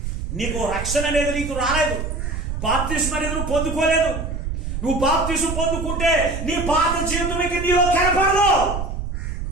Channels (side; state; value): right; noise; rumble, 4 dB below the sound